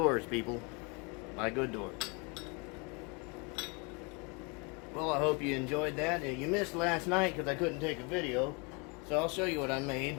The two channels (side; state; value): right; quieter; 31.4 dB